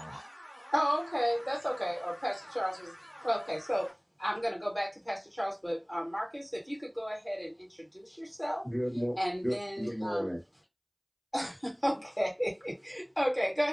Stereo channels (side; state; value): both; identical; correlation 1.00